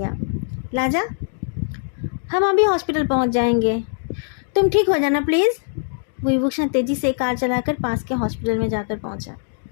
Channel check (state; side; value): silent; right; digital silence